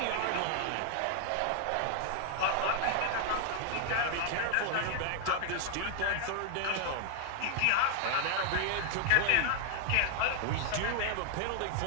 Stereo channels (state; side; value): different; both; correlation 0.00